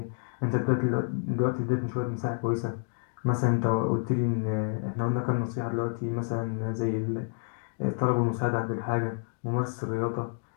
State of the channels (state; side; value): silent; right; 58 dB below the other